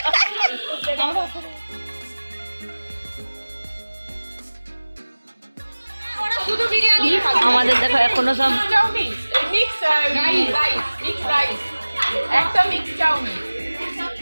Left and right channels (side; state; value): both; inverted; correlation -1.00